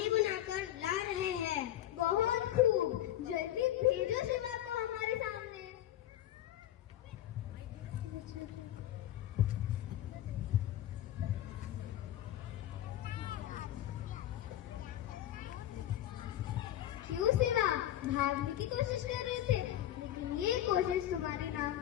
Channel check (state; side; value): quieter; right; 12.7 dB